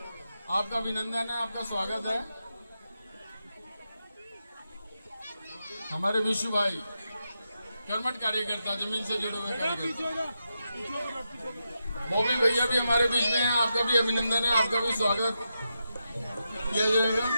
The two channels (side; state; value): both; inverted; correlation -0.87